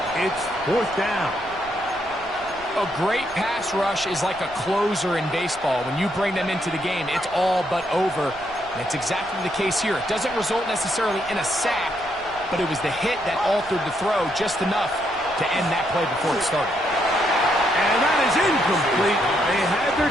It's 4th down. A great pass rush is like a closer in baseball. When you bring them into the game, it's all but over. And it's exactly the case here. It doesn't result necessarily in a sack, but it was the hit that altered the throw just enough to end that play before it started. And that is incomplete. They had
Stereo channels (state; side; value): noise; right; rumble, 22 dB below the sound